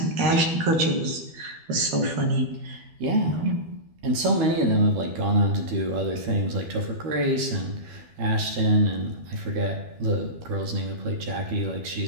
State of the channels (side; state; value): left; late; 12 ms